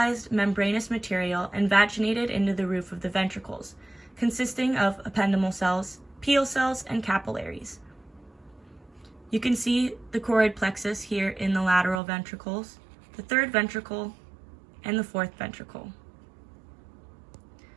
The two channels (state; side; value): drops out; left; at 12.0 s